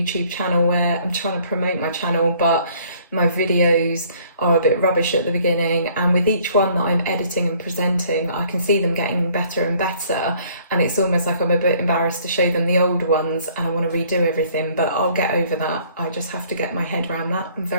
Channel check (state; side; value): inverted; both; correlation -0.59